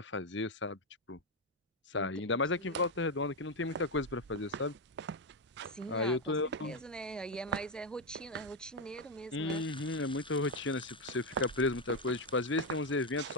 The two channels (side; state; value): both; normal; correlation 0.05